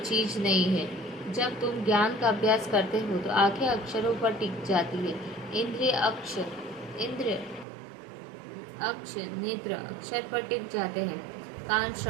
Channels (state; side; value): drops out; left; at 7.7 s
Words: नहीं है। जब तुम ज्ञान का अभ्यास करते हो तो आंखें अक्षरों पर टिक जाती है। इंद्रिय अक्ष नेत्र अक्षर पर टिक जाते हैं। कान